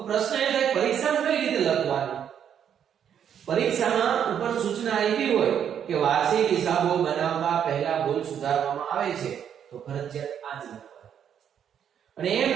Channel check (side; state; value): left; quieter; 8.8 dB